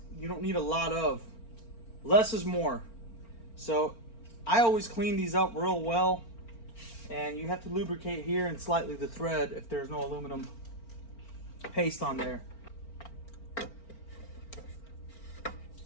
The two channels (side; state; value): right; late; 4.4 ms